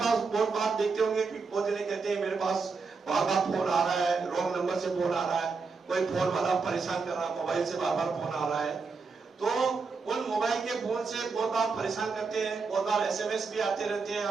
बहुत बार देखते होंगे कि बहुत जने कहते हैं मेरे पास बार बार फोन आ रहा है, रॉन्ग नंबर से फोन आ रहा है, कोई फोन वाला परेशान कर रहा है, मोबाइल से बार बार फोन आ रहा है। तो उन मोबाइल के फोन से बहुत बार परेशान करते हैं, बहुत बार एसएमएस भी आते रहते हैं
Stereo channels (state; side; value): quieter; left; 4.7 dB